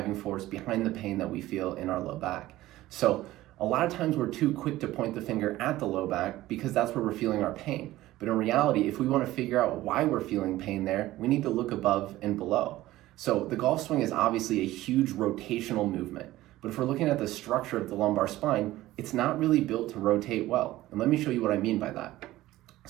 force behind the pain that we feel in our low back. So a lot of times we're too quick to point the finger at the low back because that's where we're feeling our pain. But in reality, if we want to figure out why we're feeling pain there, we need to look above and below. So the golf swing is obviously a huge rotational movement, but if we're looking at the structure of the lumbar spine, it's not really built to rotate well. And let me show you what I mean by that.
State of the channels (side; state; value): left; quieter; 16.2 dB